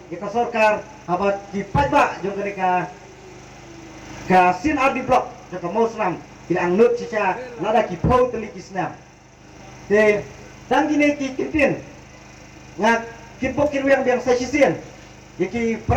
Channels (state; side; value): identical; both; correlation 1.00